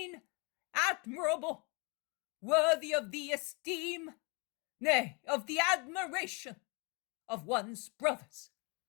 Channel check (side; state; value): right; quieter; 31.5 dB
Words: admirable, worthy of the esteem, nay, of the admiration of one's brothers?